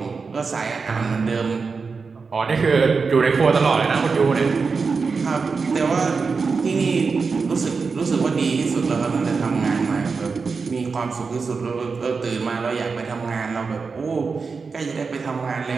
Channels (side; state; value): left; quieter; 4.8 dB